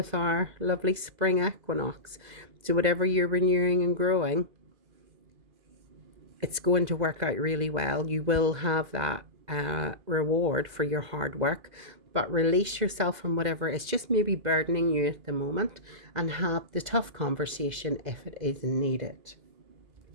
our lovely spring equinox. So whatever you're renewing and growing, it's going to work out really well. You will have that reward for your hard work, but release yourself from whatever is just maybe burdening you at the moment, and have the tough conversation if it is needed.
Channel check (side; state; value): left; late; 2.0 ms